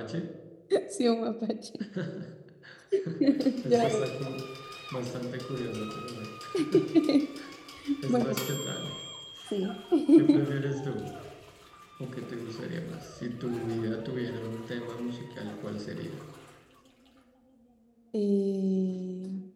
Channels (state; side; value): identical; both; correlation 1.00